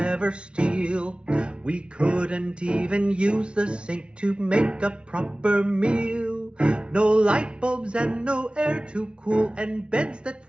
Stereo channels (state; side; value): late; left; 0.057 ms